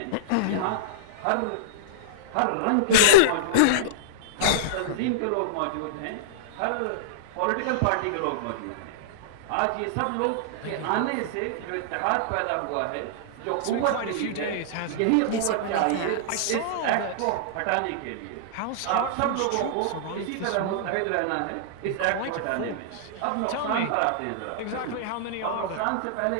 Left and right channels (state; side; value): different; both; correlation -0.02